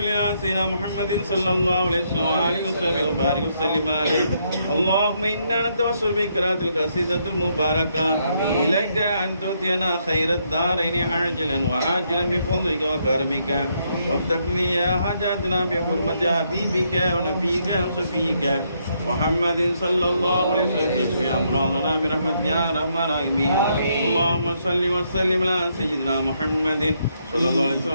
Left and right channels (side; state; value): both; inverted; correlation -0.75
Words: على سيدنا محمد صلى الله عليه وسلم وآله وصحبه وبارك وسلم عليه اللهم إنا نتوسل بقراءة القصيدة المباركة إليك أن تؤتينا خير الدارين عاجلا وآجلا بفضلك وكرمك وافتح لي يا حاجاتنا بحرمة حبيبك ونبيك وصفيك محمد صلى الله عليه وسلم اشف امراضنا برحمتك يا ارحم الراحمين اللهم صل وسلم على سيدنا محمد صلى الله عليه وسلم